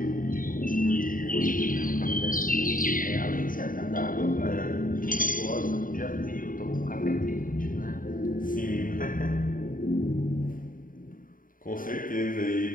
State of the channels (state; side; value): late; right; 0.40 ms